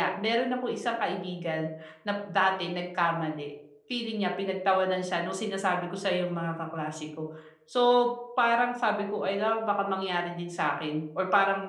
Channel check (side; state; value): both; identical; correlation 1.00